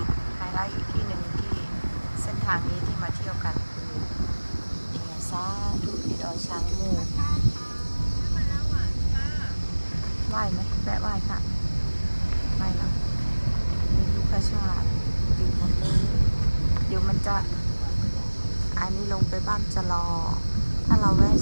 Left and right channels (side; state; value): both; inverted; correlation -1.00